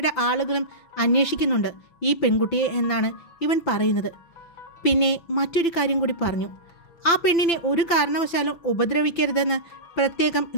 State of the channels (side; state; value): right; late; 5.9 ms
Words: ആളുകളും അന്വേഷിക്കുന്നുണ്ട് ഈ പെൺകുട്ടിയെ എന്നാണ് ഇവൻ പറയുന്നത്. പിന്നെ മറ്റൊരു കാര്യം കൂടി പറഞ്ഞു. ആ പെണ്ണിനെ ഒരു കാരണവശാലും ഉപദ്രവിക്കരുതെന്ന് പ്രത്യേകം